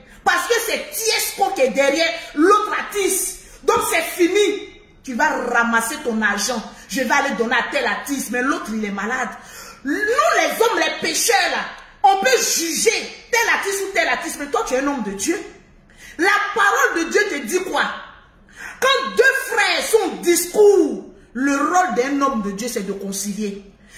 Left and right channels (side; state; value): both; identical; correlation 1.00